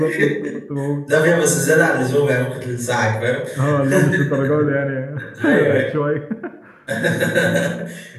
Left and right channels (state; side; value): identical; both; correlation 1.00